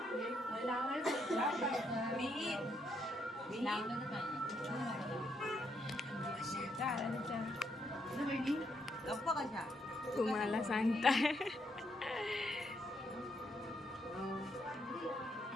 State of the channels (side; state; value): both; normal; correlation 0.76